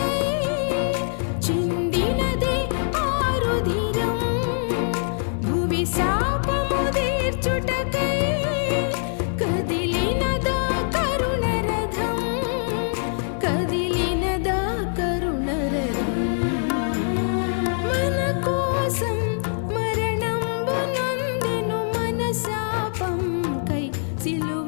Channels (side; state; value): right; silent; digital silence